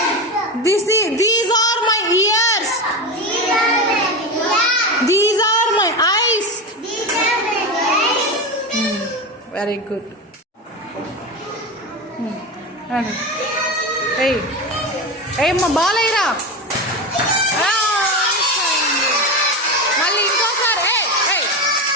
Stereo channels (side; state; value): both; normal; correlation 0.20